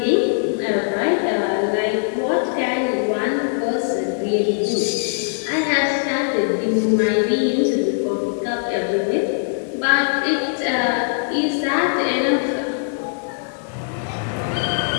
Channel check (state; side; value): silent; right; digital silence